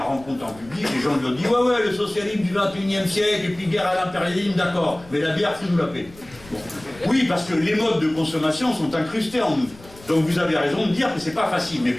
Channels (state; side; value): noise; left; rumble, 22 dB below the sound